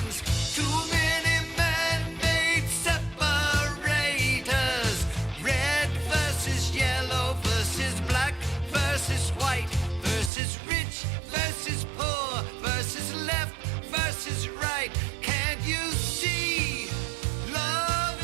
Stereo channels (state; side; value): drops out; left; at 10.3 s